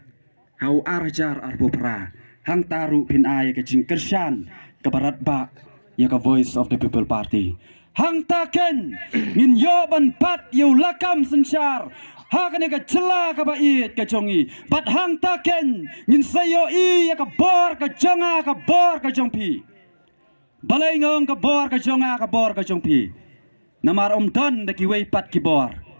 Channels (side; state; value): both; inverted; correlation -1.00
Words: hau arjar arbopra hang taru pin ay ke jing kersan ke barat ba ya ka Voice of the People Party hang taken ngin yo ban pat yo lakam sensar haka ne ka cela ka bait ka jongi bat hang taken ngin sayo i ya ka bor ka jonga ka bor ka jongpi balai ngong ka bor ka jonga ka bor ka jongpi namar don de ki wei pat ki bor